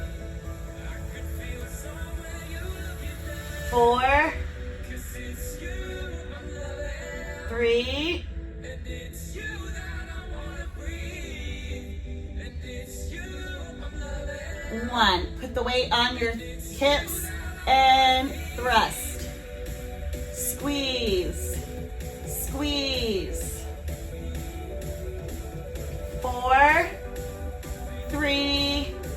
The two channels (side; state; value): both; identical; correlation 1.00